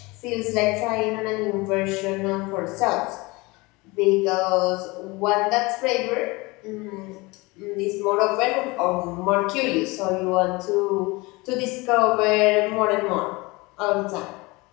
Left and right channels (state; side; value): quieter; right; 24.0 dB